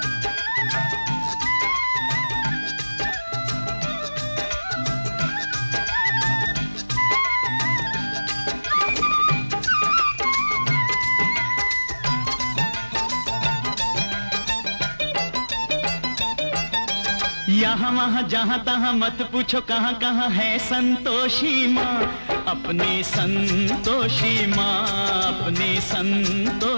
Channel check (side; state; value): both; inverted; correlation -1.00